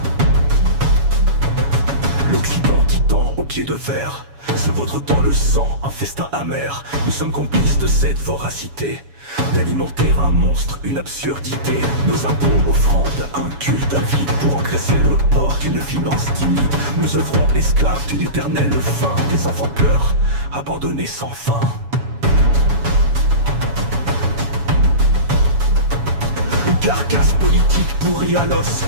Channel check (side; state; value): left; late; 7.1 ms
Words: L'Occident titan au pied de fer se vautre dans le sang, un festin amer. Nous sommes complices de cette voracité, d'alimenter un monstre, une absurdité. Nos impôts, offrandes, un culte avide pour engraisser le porc d'une finance timide. Nous œuvrons esclaves d'une éternelle faim, des enfants pleurent, abandonnés sans fin. Une carcasse politique pourrie à l'os,